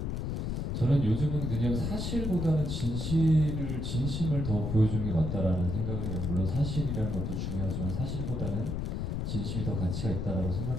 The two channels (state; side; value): noise; left; rumble, 2 dB below the sound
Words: 저는 요즘은 그냥 사실보다는 진심을 더 보여주는 게 맞다라는 생각을 해요. 물론 사실이라는 것도 중요하지만 사실보다는 진심이 더 가치가 있다라고